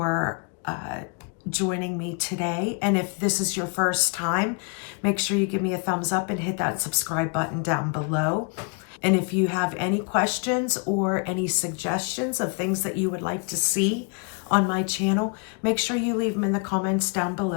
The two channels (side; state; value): right; quieter; 37.3 dB